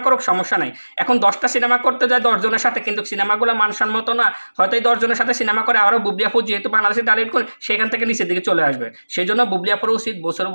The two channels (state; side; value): inverted; both; correlation -1.00